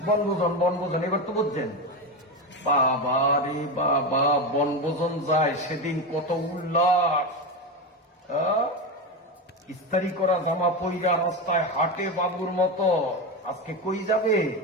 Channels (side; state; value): both; normal; correlation 0.17